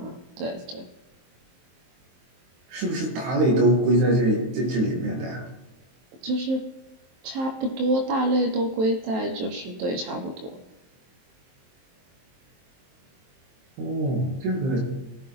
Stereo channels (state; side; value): late; left; 23 ms